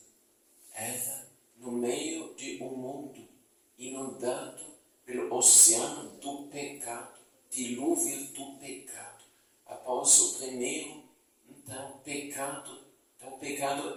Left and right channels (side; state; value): both; identical; correlation 1.00